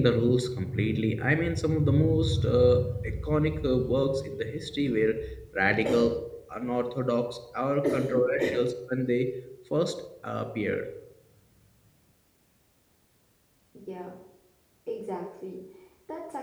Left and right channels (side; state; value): both; identical; correlation 1.00